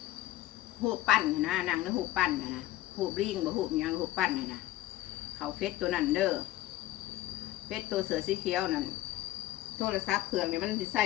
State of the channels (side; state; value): right; quieter; 15.3 dB